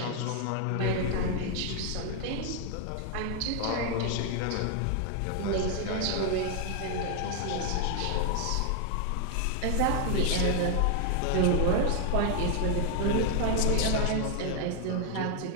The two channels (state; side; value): different; both; correlation 0.00